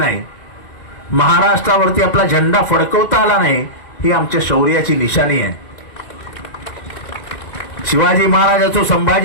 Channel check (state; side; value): late; right; 2.1 ms